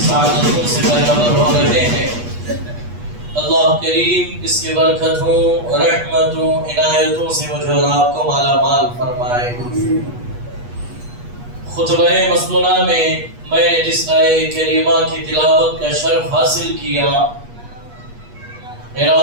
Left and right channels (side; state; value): left; late; 8.3 ms